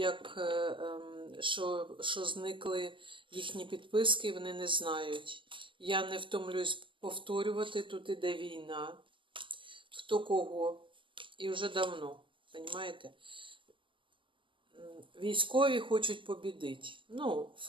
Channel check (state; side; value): late; left; 0.25 ms